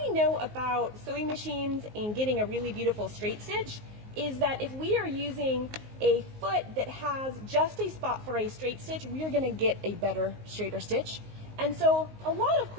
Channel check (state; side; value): late; left; 19 ms